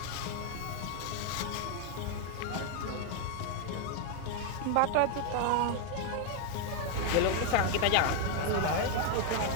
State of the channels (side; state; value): both; different; correlation 0.00